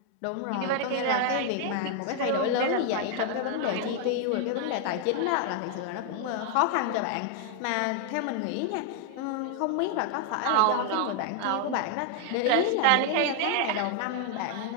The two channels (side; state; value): both; different; correlation 0.00